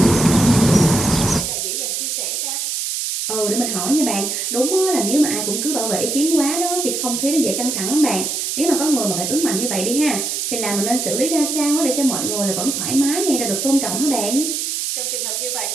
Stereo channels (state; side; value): noise; right; hiss, 2 dB below the sound